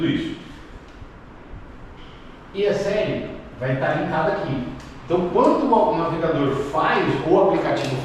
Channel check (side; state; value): both; identical; correlation 1.00